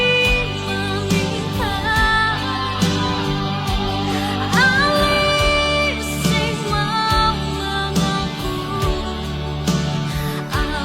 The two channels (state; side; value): identical; both; correlation 1.00